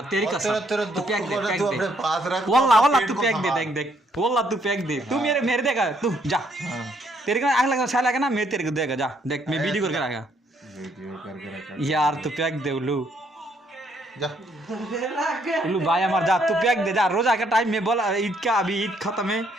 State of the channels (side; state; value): both; normal; correlation 0.70